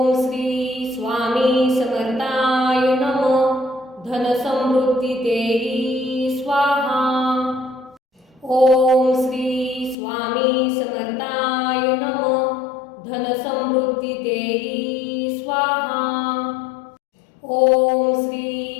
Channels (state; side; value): drops out; right; at 10.0 s